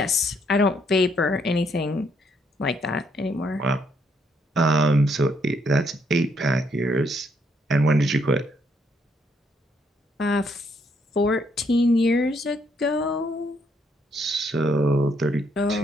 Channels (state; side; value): normal; both; correlation 0.72